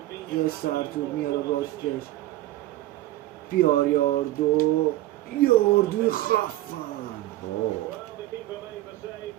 یه سرتور میاره راستش، بیار یاردوی خفن.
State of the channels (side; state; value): left; quieter; 16.2 dB